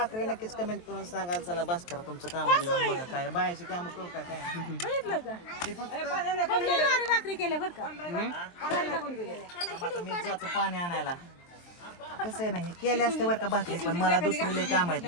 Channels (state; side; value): late; right; 23 ms